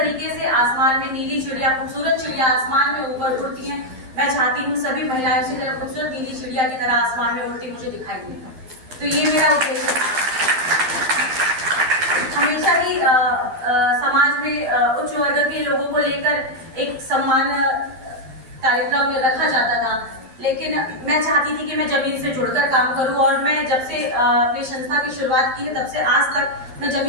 से आसमान में नीली चिड़िया, खूबसूरत चिड़िया आसमान में ऊपर उड़ती हैं, मैं चाहती हूँ सभी महिलाएं उसी तरह खूबसूरत नीली चिड़िया की तरह आसमान में उड़ती मुझे दिखाई दे। तो ये मेरा उद्देश्य था। हमेशा ही समाज में उच्च वर्ग के लोगों को लेकर एक सम्मान कार्यक्रम में रखा जाता था, लेकिन मैं चाहती थी कि मैं जमीन से जुड़कर काम करूं, और मैं जब से अपनी संस्था की शुरुआत की है तब से आज तक मैं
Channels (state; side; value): late; left; 12 ms